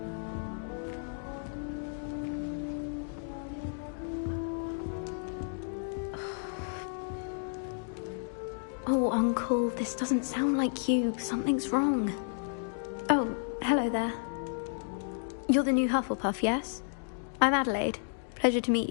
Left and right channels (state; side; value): silent; right; digital silence